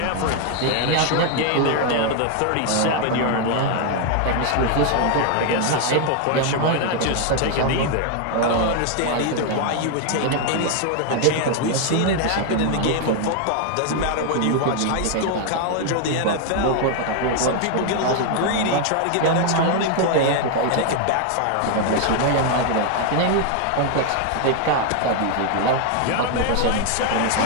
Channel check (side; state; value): both; different; correlation 0.00